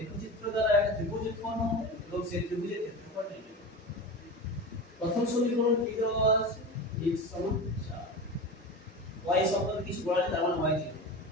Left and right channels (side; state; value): both; normal; correlation 0.28